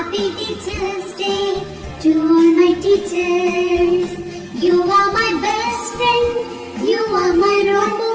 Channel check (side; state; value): both; identical; correlation 1.00